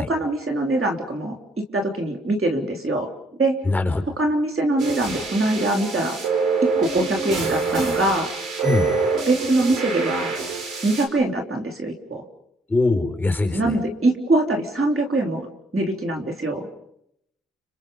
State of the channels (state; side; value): normal; both; correlation 0.66